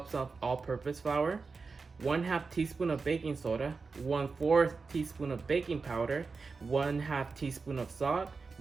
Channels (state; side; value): quieter; left; 4.5 dB